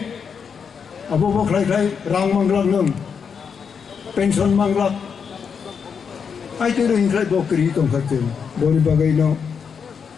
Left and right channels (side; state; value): right; quieter; 6.5 dB